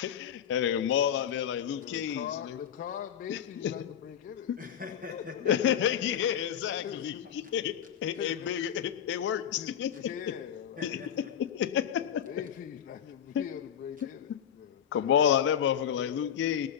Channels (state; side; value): quieter; right; 9.2 dB